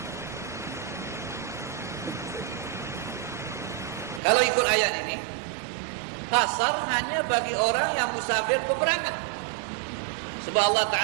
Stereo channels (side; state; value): left; drops out; at 4.2 s